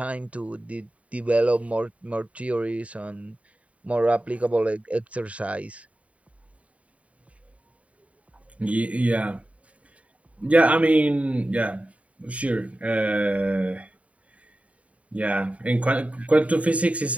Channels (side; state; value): left; late; 0.066 ms